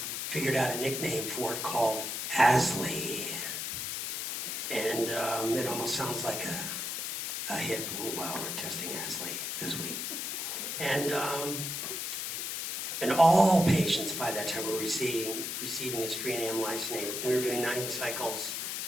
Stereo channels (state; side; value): noise; left; hiss, 3 dB below the sound